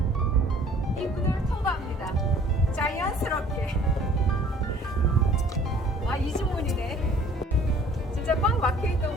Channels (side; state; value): both; normal; correlation 0.53